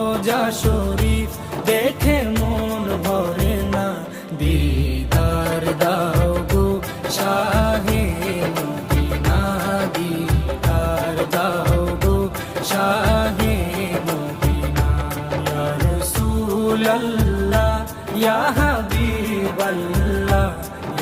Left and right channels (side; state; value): both; identical; correlation 1.00